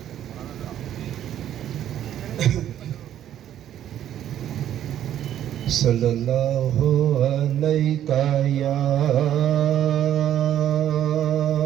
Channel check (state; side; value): quieter; left; 11.0 dB